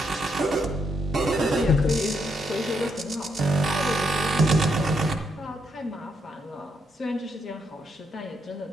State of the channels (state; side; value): normal; both; correlation 0.78